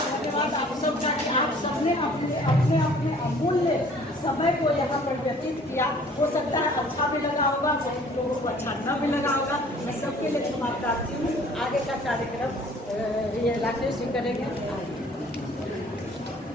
धन्यवाद आप सबका कि आप सबने अपने अपने अमूल्य समय को यहाँ पर व्यतीत किया। हो सकता है अच्छा भी लगा होगा, बहुत लोगों को अच्छा न भी लगा होगा, मैं सबके लिए क्षमा प्रार्थी हूँ। आगे का कार्यक्रम ये राकेश जी करेंगे।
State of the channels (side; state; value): both; normal; correlation 0.54